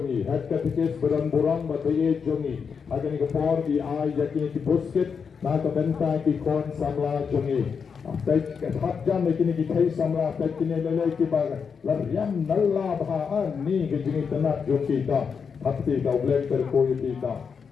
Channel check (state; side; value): quieter; right; 6.1 dB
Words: Head Katikis Badan Burang, Bataye Jomi. Agani Kapor, the Eye, Yakini Busket, Naka Mentang, Ikon, Samla Jomi. Baik hak jam kini kita samla baik kini lelai kita lariam nalla bahan ni kejini tenak jom kita hati kau bleng terkoi kita